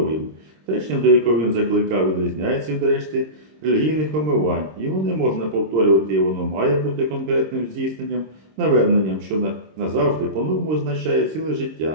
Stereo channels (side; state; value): left; late; 26 ms